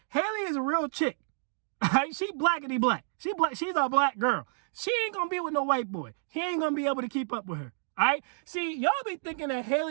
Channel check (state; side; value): silent; left; digital silence